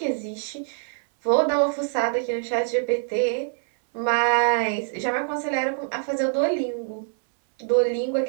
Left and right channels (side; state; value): left; silent; 62 dB below the other